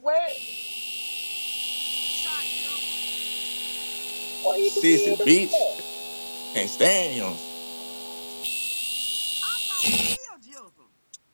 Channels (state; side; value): inverted; both; correlation -1.00